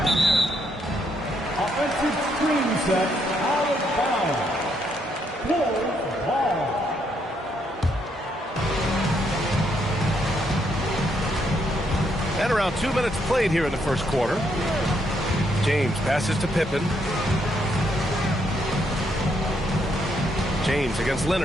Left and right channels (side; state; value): both; normal; correlation 0.75